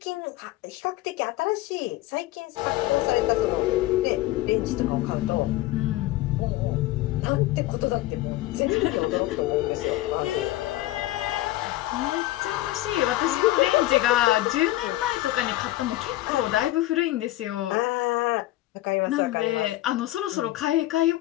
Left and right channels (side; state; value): right; quieter; 16.5 dB